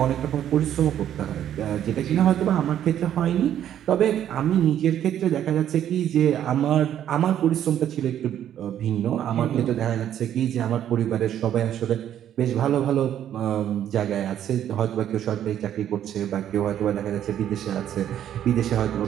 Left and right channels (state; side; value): quieter; left; 10.6 dB